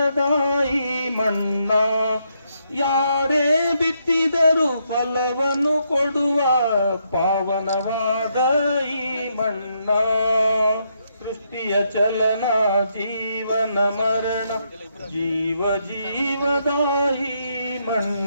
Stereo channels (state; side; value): inverted; both; correlation -0.77